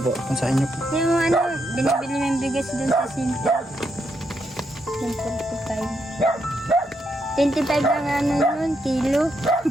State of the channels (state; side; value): normal; both; correlation 0.79